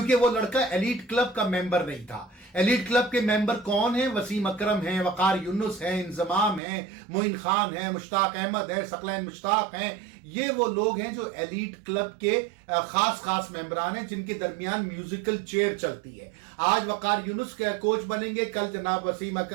वो लड़का एलीट क्लब का मेंबर नहीं था। एलीट क्लब के मेंबर कौन है? वसीम अकरम है, वकार यूनुस है, इंजमाम है, मोइन खान है, मुश्ताक अहमद है, सकलैन मुश्ताक हैं। ये वो लोग हैं जो एलीट क्लब के खास मेंबरान हैं, जिनके दरमियान म्यूजिकल चेयर चलती है। आज वकार यूनुस के कोच बनेंगे, कल जनाब वसीम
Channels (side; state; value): left; drops out; at 6.6 s